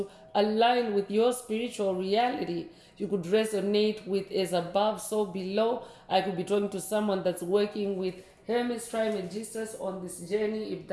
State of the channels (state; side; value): identical; both; correlation 1.00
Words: align with your spiritual reality. You could resonate with as above, so below. I could be talking to someone that's working with Hermes Trismegistus on this journey. If